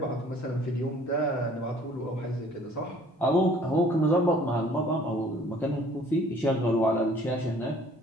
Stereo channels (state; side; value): normal; both; correlation 0.55